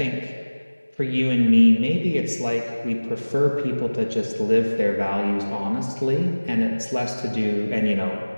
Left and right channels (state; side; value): inverted; both; correlation -1.00